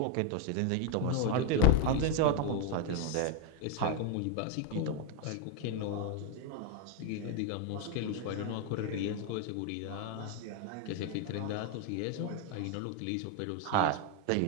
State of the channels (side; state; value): both; different; correlation 0.01